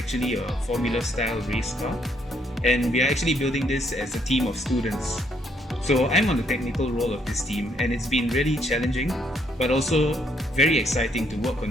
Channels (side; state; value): both; normal; correlation 0.71